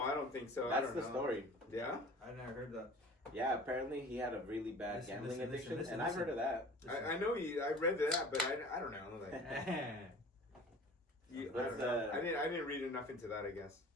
don't think so. I That's don't the know. story. Yeah? I never heard that. Yeah, apparently he had a really bad Listen, gambling listen, addiction, listen, and I've heard of that. I know you. I read that, but I don't know. Like, I What's don't know. the- I didn't read enough into that. I guess.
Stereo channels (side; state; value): both; normal; correlation 0.43